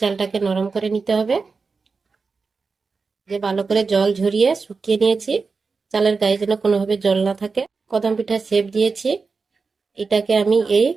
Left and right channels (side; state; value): left; quieter; 4.6 dB